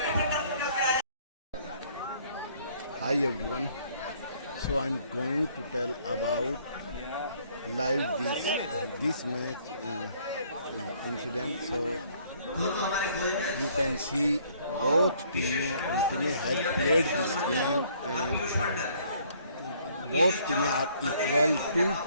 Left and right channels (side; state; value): both; inverted; correlation -0.62